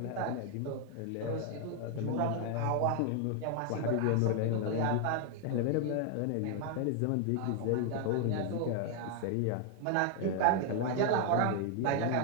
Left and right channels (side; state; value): both; different; correlation 0.00